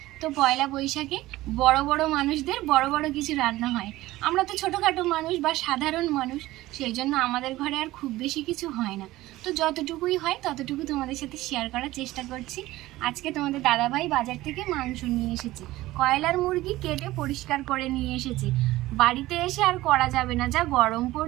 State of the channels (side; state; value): left; quieter; 17.2 dB